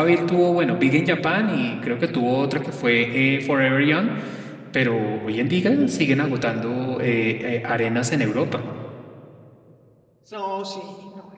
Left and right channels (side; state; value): both; identical; correlation 1.00